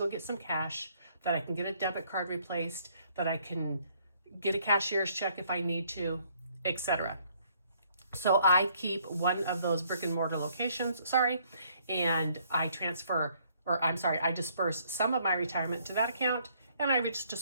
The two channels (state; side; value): inverted; both; correlation -0.65